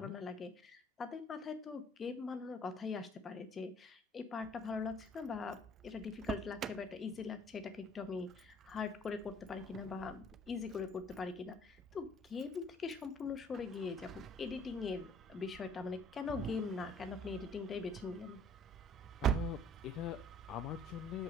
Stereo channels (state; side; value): normal; both; correlation 0.57